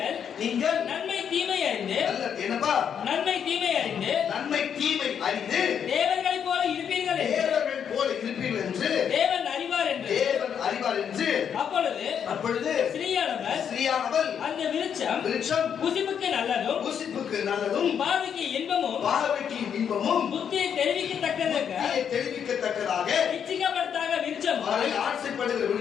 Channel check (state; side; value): quieter; right; 8.0 dB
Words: நீங்கள் நன்மை தீமை அறிந்து, என்னப்பா நன்மை தீமை அறிந்து, நன்மை தீமை அறிந்து தேவர்களைப் போல இருப்பீர்கள், தேவர்கள் போல இருப்பீர்கள் என்று தேவன் அறிவார் என்று, தேவன் அப்பொழுது ஸ்திரீயானவள் அந்த விருட்சம் புசிப்புக்கு நல்லதும் பார்வைக்கு இன்பமும் புத்தியை தெரிவிக்கத்தக்கதாக இச்சிக்கப்படுத்தாக விருட்சமும் ஆசைப்படுகிற